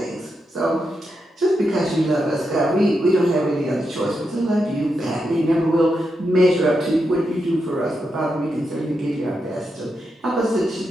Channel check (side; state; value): both; normal; correlation 0.85